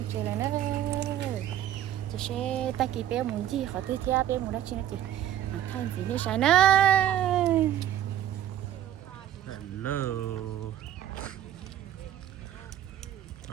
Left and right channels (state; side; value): quieter; left; 11.4 dB